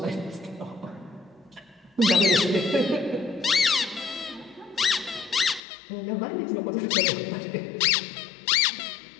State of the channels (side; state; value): right; drops out; at 5.6 s